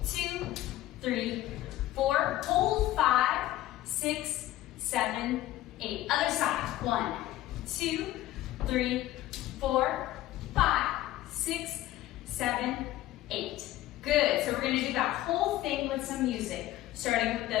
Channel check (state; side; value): quieter; right; 15.1 dB